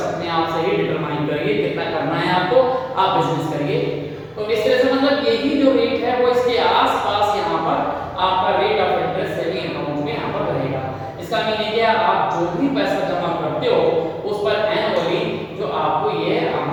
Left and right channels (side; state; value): both; identical; correlation 1.00